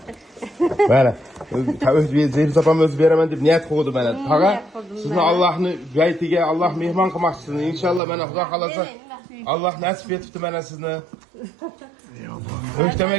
Mana, Zeynep opam o'zi beraman deb niyat qildi mana. Tag'a, sizni Allohning baytiga Alloh mehmon qilmoqchisini. Inshaalloh mana Xudo xolasa Alloh nasib etibdi mana sizni.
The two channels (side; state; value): left; drops out; at 8.0 s